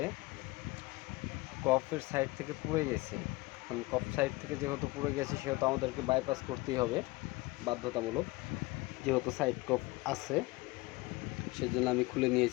কফের সাইড থেকে পুড়ে গেছে। এখন কফ সাইড থেকে যেহেতু পুড়ে গেছে সেহেতু আমাদেরকে বাইপাস করতেই হবে বাধ্যতামূলক, যেহেতু সাইড কফ আছে। সেজন্য আমি খুলে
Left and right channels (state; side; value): quieter; right; 22.2 dB